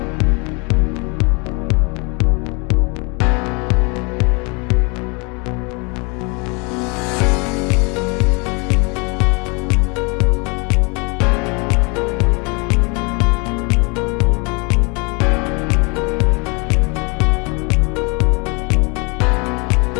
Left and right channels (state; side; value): quieter; right; 30.9 dB